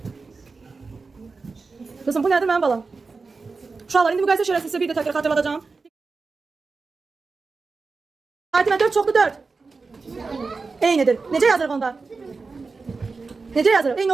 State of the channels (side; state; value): left; quieter; 4.3 dB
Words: Kızım bu nədir mənim balam? Uşaqlar indi müqayisə şərəsi sizə bir də təkrar xatırladacağım. Fatimə 4 çoxdur 4. Eynidir. Necə yazırıq onda? Necə yazırıq? Eyni